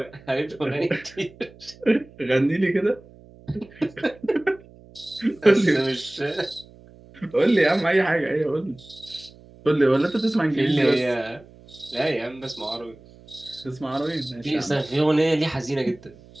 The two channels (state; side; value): noise; right; hum, 23 dB below the sound